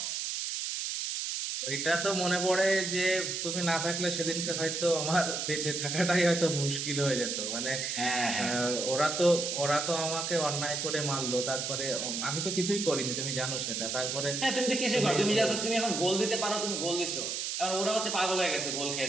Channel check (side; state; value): right; noise; hiss, 2 dB below the sound